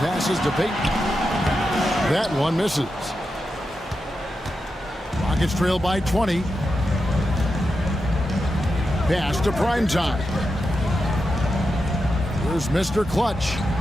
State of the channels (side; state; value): both; normal; correlation 0.88